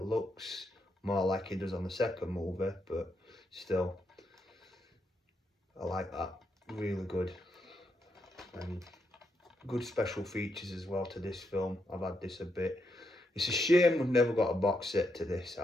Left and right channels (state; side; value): normal; both; correlation 0.81